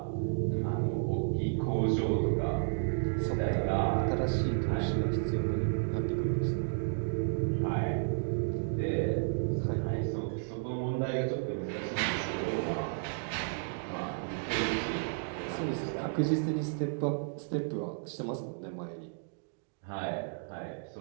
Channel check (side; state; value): left; silent; digital silence